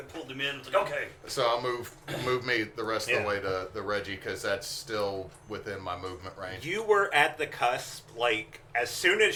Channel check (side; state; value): both; identical; correlation 1.00